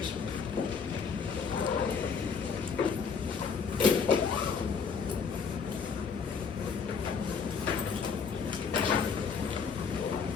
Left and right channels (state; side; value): quieter; right; 5.9 dB